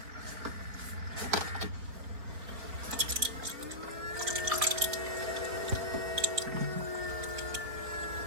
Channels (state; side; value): late; left; 4.6 ms